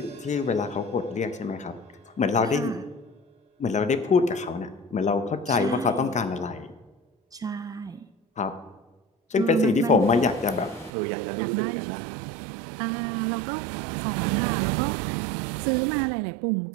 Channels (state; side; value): drops out; left; at 10.9 s